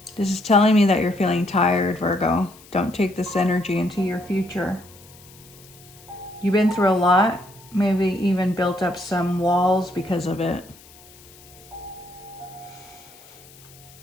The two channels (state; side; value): noise; left; hiss, 23 dB below the sound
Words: This is telling me that you're feeling tired, Virgo. Don't take this energy into your future. You've been through a lot, maybe even built up some walls because of it.